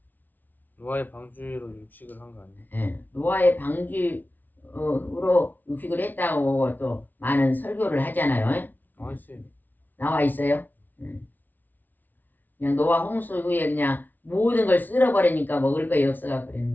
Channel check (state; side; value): late; right; 0.085 ms